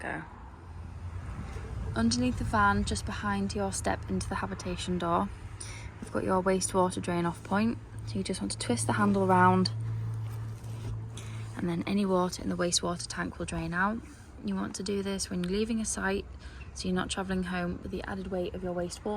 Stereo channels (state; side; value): identical; both; correlation 1.00